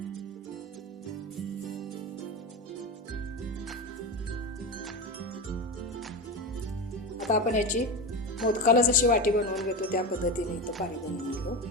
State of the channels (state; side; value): normal; both; correlation 0.22